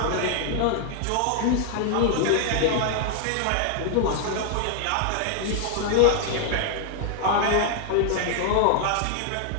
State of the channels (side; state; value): both; different; correlation 0.00